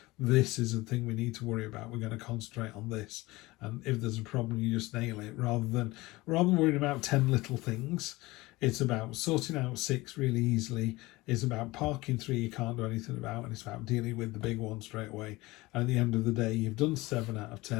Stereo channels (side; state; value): right; quieter; 20.7 dB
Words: This is the thing we need to worry about. We're going to concentrate on this, and if there's a problem, you just nail it. Rather than worrying about 10 little things, it's about sorting out 6 really easily. It's about parking 3 you can't do anything about, and it's about dealing with the big one straight away. And at the end of the day, you've done 7 out of 10,